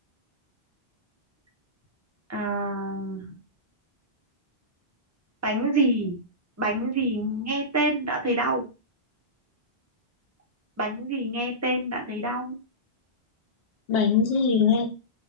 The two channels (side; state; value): both; normal; correlation -0.19